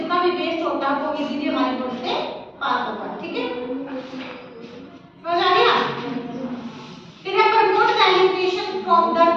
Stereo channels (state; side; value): identical; both; correlation 1.00